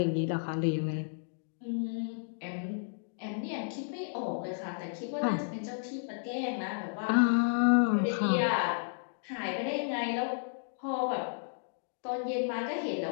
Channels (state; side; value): silent; right; digital silence